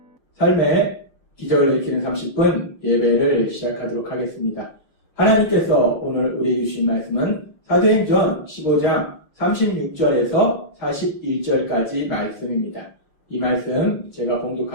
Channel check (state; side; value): late; right; 6.0 ms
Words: 삶의 기적을 일으키는 30분 예배를 시작하도록 하겠습니다. 하나님께서 오늘 우리에게 주신 말씀은 사도행전 15장 36절에서 41절까지 말씀입니다. 이 말씀 제가